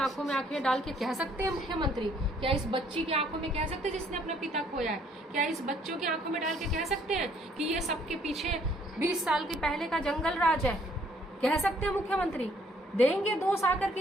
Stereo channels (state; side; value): normal; both; correlation 0.63